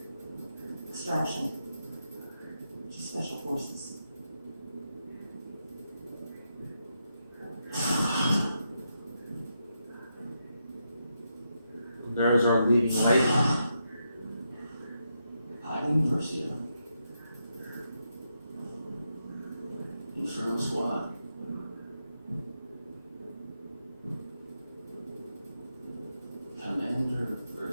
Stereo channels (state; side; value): inverted; both; correlation -0.83